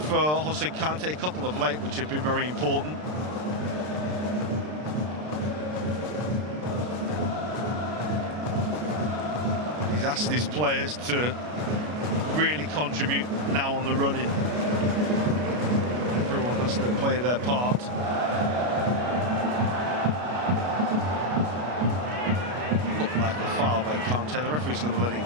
Jose Kante, a couple of late which have been very important. He's asked his players to really contribute now on the running. Everyone has to play their part. By Kante. The referee's going to let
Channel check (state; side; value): late; left; 33 ms